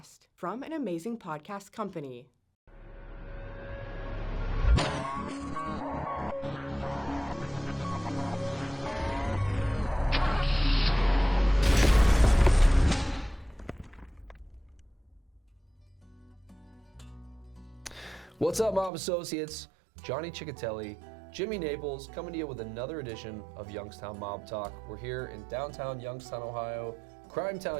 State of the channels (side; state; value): left; drops out; at 18.9 s